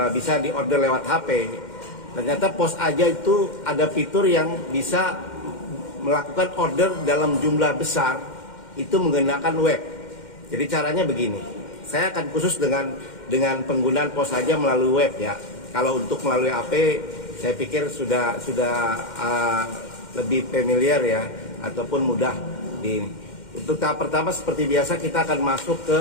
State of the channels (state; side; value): late; right; 2.1 ms